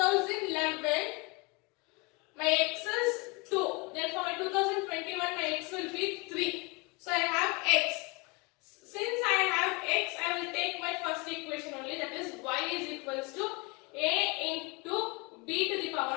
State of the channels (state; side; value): quieter; right; 27.2 dB